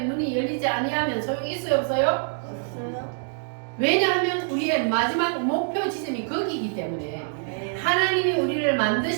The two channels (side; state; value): left; silent; digital silence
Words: 눈이 열리지 아니하면 소용이 있어요, 없어요? 왜냐하면 우리의 마지막 목표 지점이 거기이기 때문에 하나님이 우리를